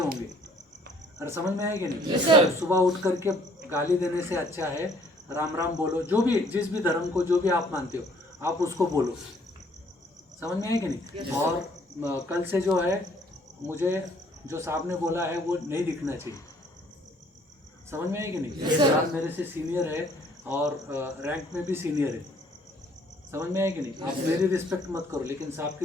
और समझ में है कि नहीं? सुबह उठ करके गाली देने से अच्छा है राम राम बोलो। जो भी जिस भी धर्म को जो भी आप मानते हो आप उसको बोलो। समझ में है कि नहीं? और कल से जो है मुझे जो साहब ने बोला है वो नहीं दिखना चाहिए। समझ में है कि नहीं? साहब मेरे से सीनियर है और रैंक में भी सीनियर है। समझ में है कि नहीं? आप मेरी रिस्पेक्ट मत करो, लेकिन साहब की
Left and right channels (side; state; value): both; normal; correlation 0.61